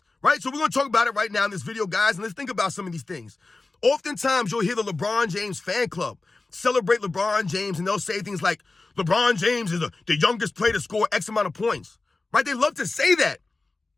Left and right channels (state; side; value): quieter; right; 3.5 dB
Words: Right? So we're going to talk about it right now in this video, guys. And let's think about some of these things. Oftentimes, you'll hear the LeBron James fan club celebrate LeBron James, and they'll say things like, LeBron James is the youngest player to score X amount of points. Right? They love to say that.